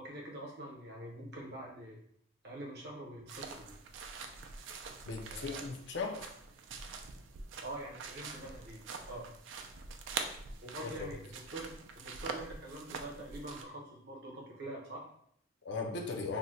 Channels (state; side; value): normal; both; correlation 0.14